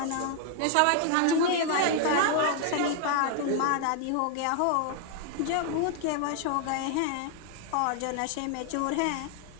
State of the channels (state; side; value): different; both; correlation 0.00